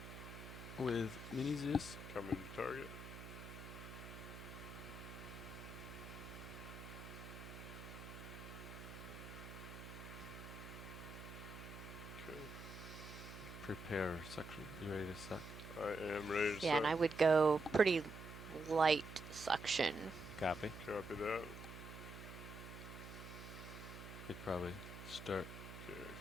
with mini Zeus. Coming to target. Okay. Prepare suction. You ready to suck? I am ready to Yeah, and I would go pretty light suction. Copy. Copy that. Could probably start Okay,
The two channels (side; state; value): right; noise; hum, 11 dB below the sound